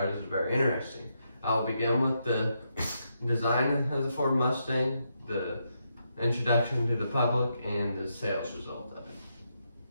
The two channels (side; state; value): both; inverted; correlation -0.81